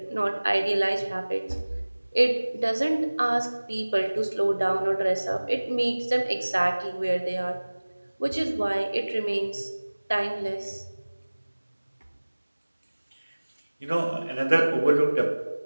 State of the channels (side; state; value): both; inverted; correlation -1.00